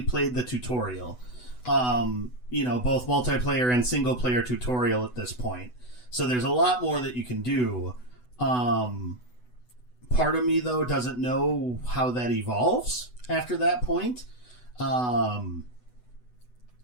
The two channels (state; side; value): late; right; 8.0 ms